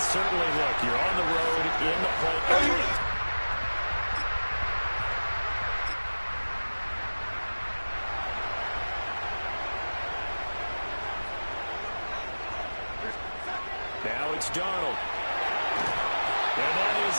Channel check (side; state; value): both; inverted; correlation -1.00